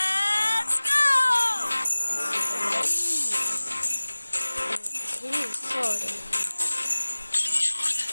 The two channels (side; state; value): both; inverted; correlation -1.00